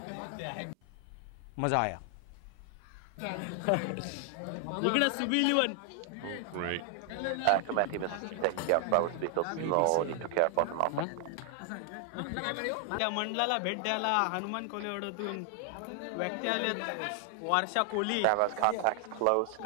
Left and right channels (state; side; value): different; both; correlation 0.00